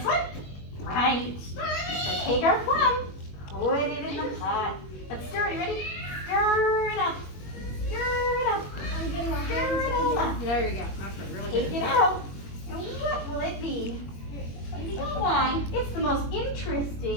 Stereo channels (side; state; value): right; late; 21 ms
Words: one? Right. So take our plum, put it in the pot. Let's stir it. You ready? Stir it up. Stir it up. I'm getting my Stir hands it all up. There you go. That's right. Really Take it out. And what will it be? Why, it's the most